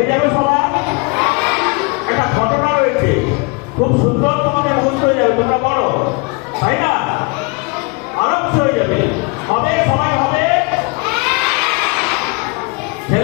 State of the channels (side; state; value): right; quieter; 29.4 dB